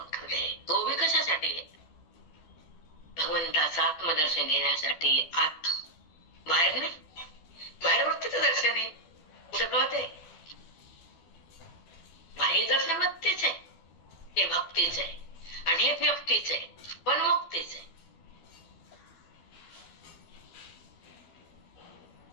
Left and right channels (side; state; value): right; late; 12 ms